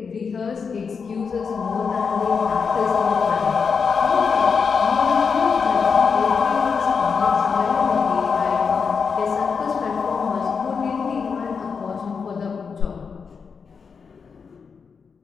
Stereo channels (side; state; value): right; quieter; 5.7 dB